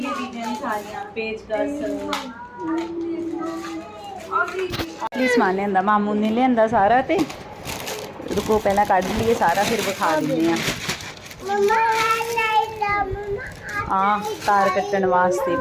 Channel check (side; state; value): both; identical; correlation 1.00